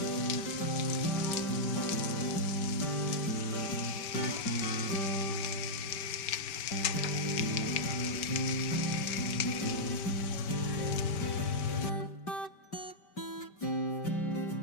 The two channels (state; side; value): late; right; 5.2 ms